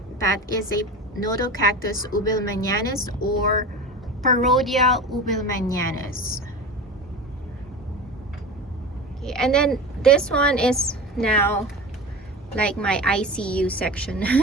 that is a Mellocactus ubelmanianus or Parodia ubelmanianus. Okay, and then this one is now like my ICU section.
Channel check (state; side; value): normal; both; correlation 0.31